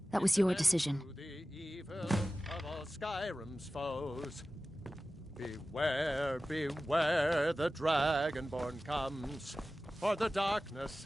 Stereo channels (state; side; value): normal; both; correlation 0.95